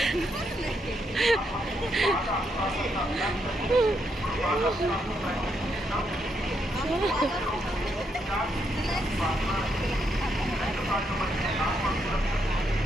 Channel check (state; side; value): normal; both; correlation 0.78